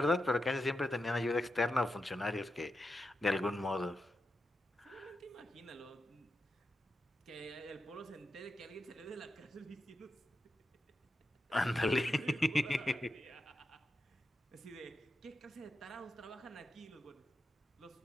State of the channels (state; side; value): normal; both; correlation 0.88